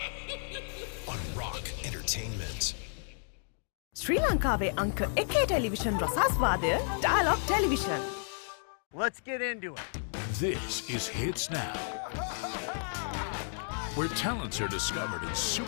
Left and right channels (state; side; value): silent; right; digital silence